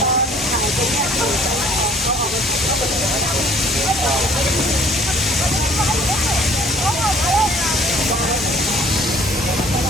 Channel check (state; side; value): normal; both; correlation 0.56